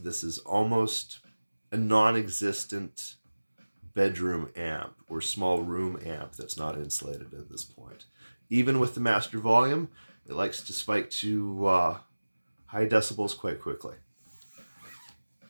is almost a non-existent bedroom amp or small room amp that's not insulated at this point. Even with the master volume, it likes to spike to high decibels quite quickly.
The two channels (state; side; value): inverted; both; correlation -1.00